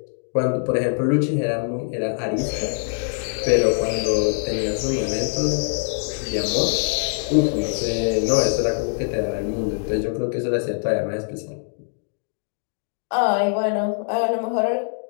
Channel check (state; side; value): silent; right; digital silence